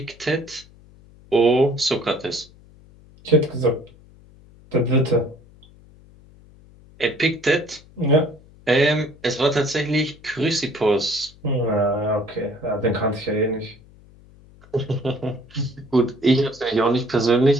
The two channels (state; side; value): noise; left; hum, 25 dB below the sound